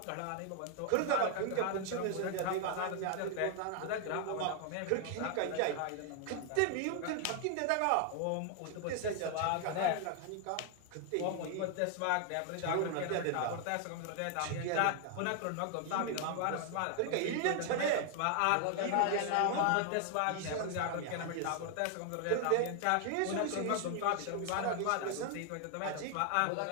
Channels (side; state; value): both; different; correlation 0.00